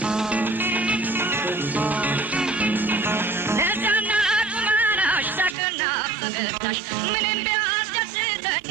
ለዛና ቁመናሽ ሳቅና ፈገግታሽ ምንም ቢያስደስተኝ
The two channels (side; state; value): left; drops out; at 5.6 s